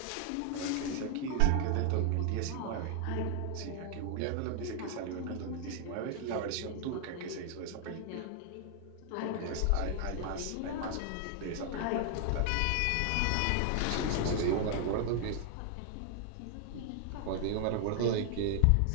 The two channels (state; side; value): different; both; correlation 0.00